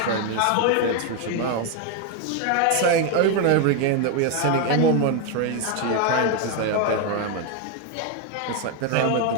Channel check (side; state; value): both; different; correlation 0.01